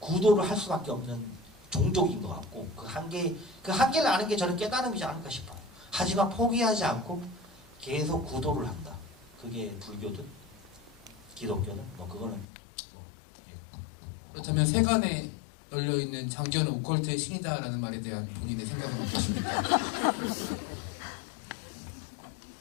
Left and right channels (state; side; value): drops out; right; at 12.5 s